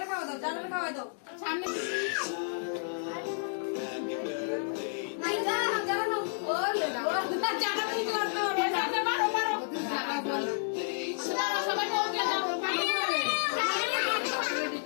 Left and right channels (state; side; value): silent; right; digital silence